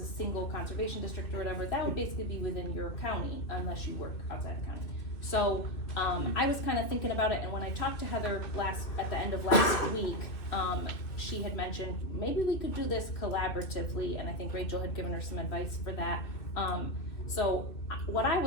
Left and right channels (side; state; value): right; late; 2.6 ms